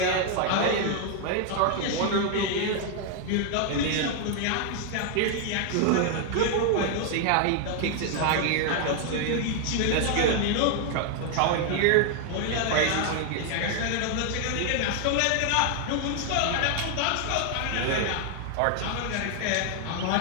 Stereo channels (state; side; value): different; both; correlation 0.00